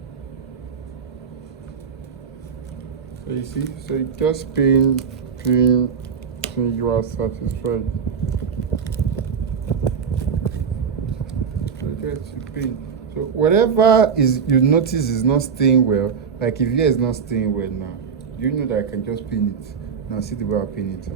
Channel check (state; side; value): quieter; left; 6.5 dB